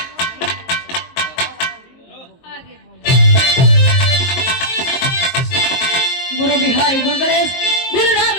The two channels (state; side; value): late; right; 23 ms